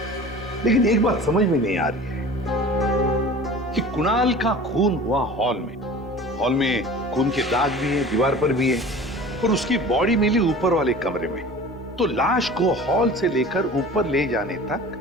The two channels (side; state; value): both; normal; correlation 0.40